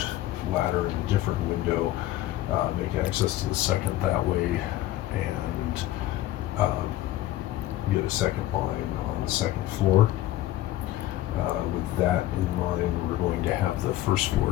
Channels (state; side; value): quieter; right; 14.9 dB